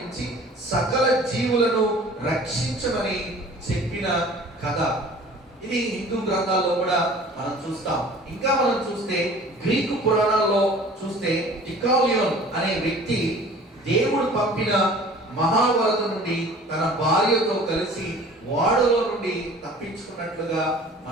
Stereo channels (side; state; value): both; normal; correlation 0.46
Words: సకల జీవులను రక్షించమని చెప్పిన కథ. ఇది హిందూ గ్రంథాల్లో కూడా మనం చూస్తాం. ఇంకా మనం చూస్తే గ్రీకు పురాణాల్లో చూస్తే డికాలియోన్ అనే వ్యక్తి దేవుడు పంపిన మహావరద నుండి తన భార్యతో కలిసి ఓడలో నుండి తప్పించుకున్నట్లుగా